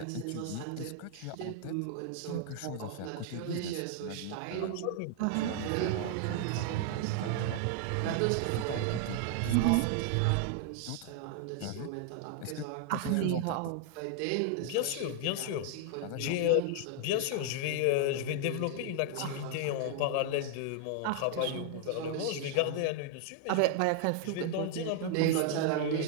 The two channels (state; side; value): different; both; correlation 0.00